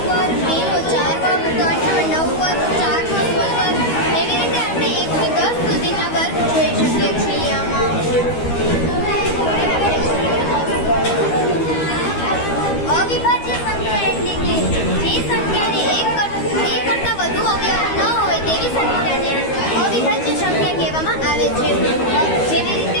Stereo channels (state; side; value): late; right; 13 ms